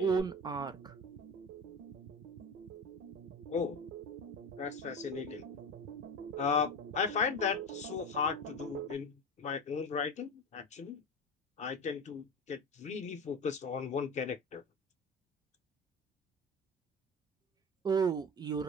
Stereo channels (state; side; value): normal; both; correlation 0.27